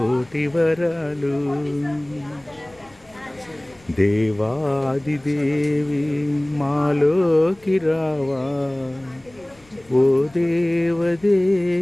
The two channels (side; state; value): left; noise; rumble, 28 dB below the sound